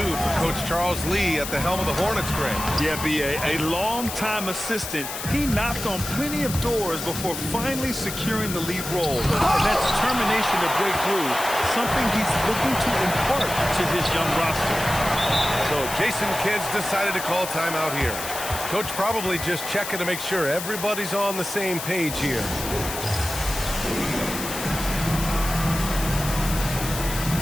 Coach Charles Lee at the helm of the Hornets, Greg. Yeah, B.A., a long-time assistant. He knocked on plenty of doors before finally securing the lead role. And that determination to break through, something he's looking to impart to his young roster. So Jason Kidd decided to call timeout here. Coach probably just checking to make sure everybody's on the same page here.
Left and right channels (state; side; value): noise; left; hiss, 7 dB below the sound